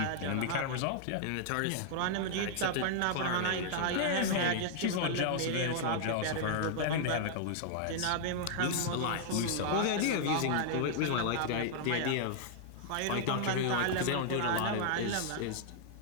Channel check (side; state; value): both; different; correlation -0.01